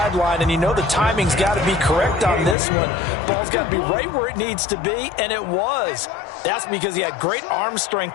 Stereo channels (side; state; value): right; drops out; at 2.6 s